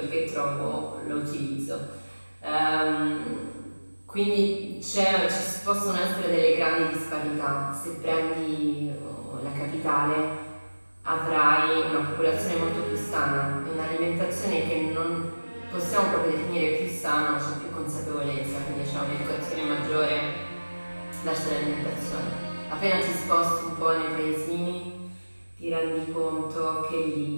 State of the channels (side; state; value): both; inverted; correlation -1.00